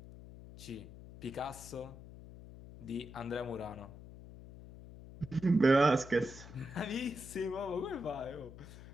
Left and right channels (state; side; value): noise; left; hum, 15 dB below the sound